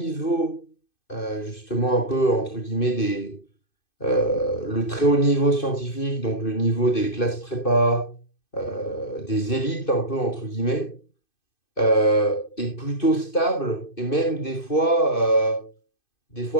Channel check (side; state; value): right; late; 2.5 ms